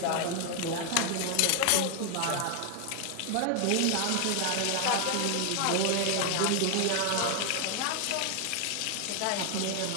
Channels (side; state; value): both; different; correlation 0.00